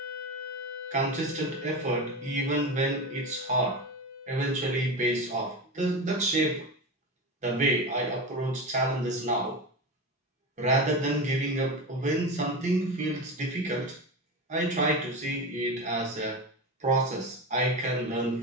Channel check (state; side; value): normal; both; correlation 0.22